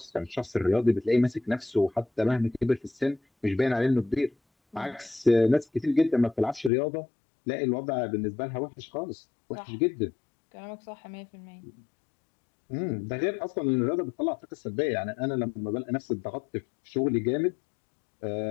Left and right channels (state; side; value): drops out; right; at 6.7 s